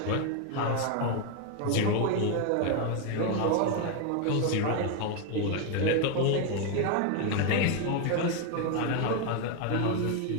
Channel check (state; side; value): different; both; correlation 0.01